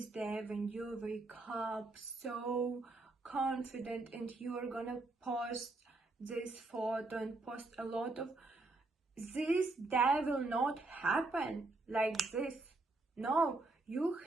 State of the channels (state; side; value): quieter; left; 3.2 dB